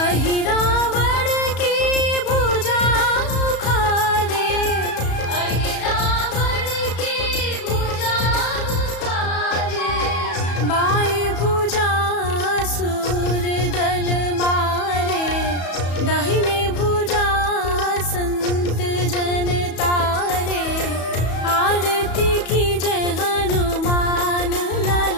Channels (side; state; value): right; late; 34 ms